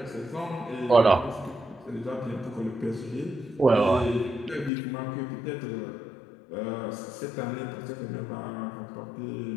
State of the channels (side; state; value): right; drops out; at 4.7 s